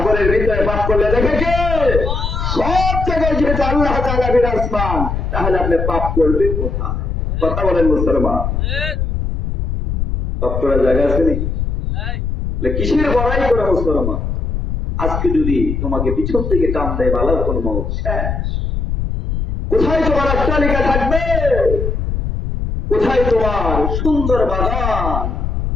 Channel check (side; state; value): left; noise; rumble, 2 dB below the sound